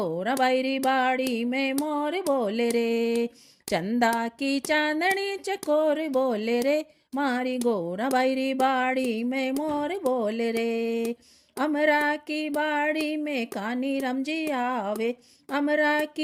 बैरी बाड़ी में मोर बोले रे। चंदा की चांदनी चकोर बोले रे, मारी गोरा बैरी बाड़ी में मोर बोले रे। अमरा की बाड़ी में कानी राम जी आवे, अमरा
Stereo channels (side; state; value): both; identical; correlation 1.00